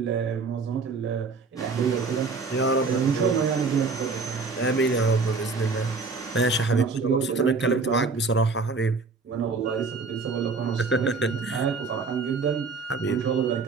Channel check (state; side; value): quieter; left; 4.4 dB